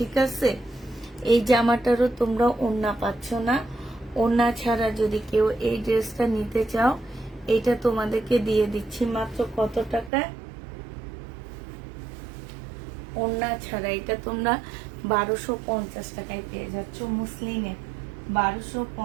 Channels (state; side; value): drops out; left; at 10.1 s